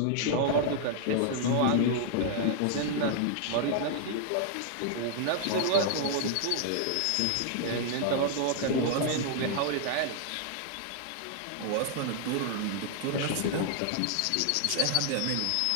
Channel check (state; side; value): different; both; correlation 0.00